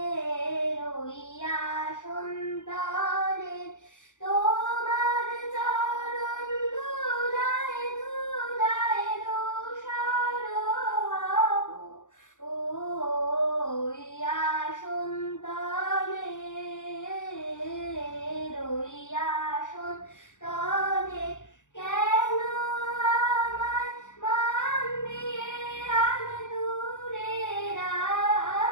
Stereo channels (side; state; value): right; late; 0.86 ms